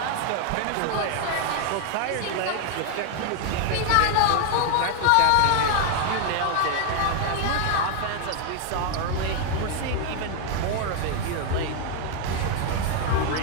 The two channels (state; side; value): different; both; correlation 0.00